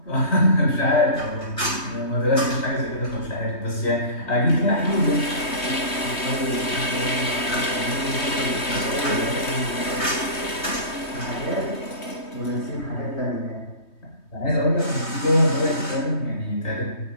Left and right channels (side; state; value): right; late; 3.2 ms